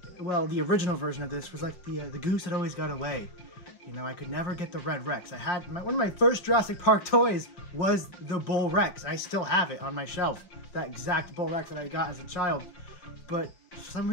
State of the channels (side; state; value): right; late; 5.7 ms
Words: well, the original version of this was like the goose that always got away. You know, I could never get the Red Rex. I had one of my first Jurassic Park toys was the Bull Rex. I still have it on my shelf, that exact Bull Rex that I got as a child. But for some